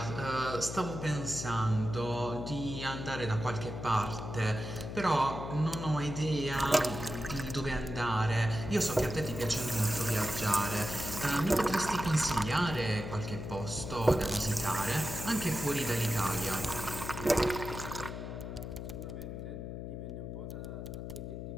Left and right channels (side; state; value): left; noise; hum, 7 dB below the sound